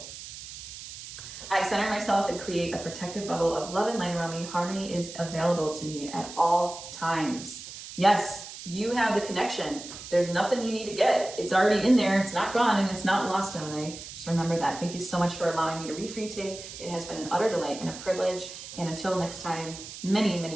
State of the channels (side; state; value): right; noise; hiss, 12 dB below the sound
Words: I center myself and create a protective bubble of love and light around me. Harmony is available to me at all times. Yes, You have the connection. There's nothing you need to get. It's already in there. It's not gone and it's not lost, Gemini. Just remember that. Thank you so much for allowing me to read for you today. It has been an utter delight and a privilege. And until next time, many,